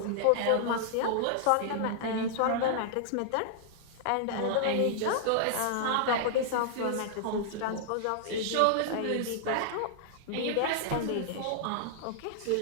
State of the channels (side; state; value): both; different; correlation -0.01